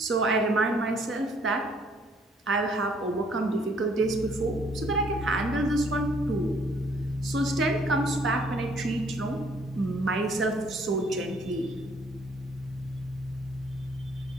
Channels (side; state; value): both; normal; correlation 0.63